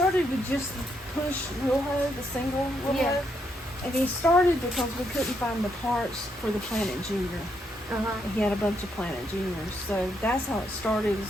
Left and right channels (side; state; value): both; normal; correlation 0.77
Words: with just the push wheel hoe, the single wheel hoe. And he started because we couldn't find the parts for the Planet Junior. He had a bunch of Planet Juniors. So that's how it started,